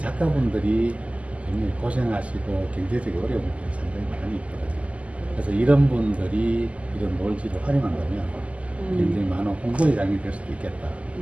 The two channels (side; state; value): left; late; 0.064 ms